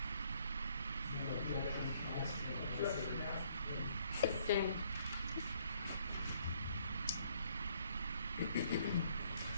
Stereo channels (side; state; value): both; inverted; correlation -0.66